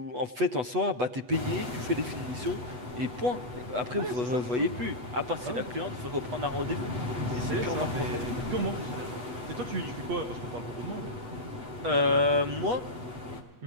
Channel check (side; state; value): left; late; 8.1 ms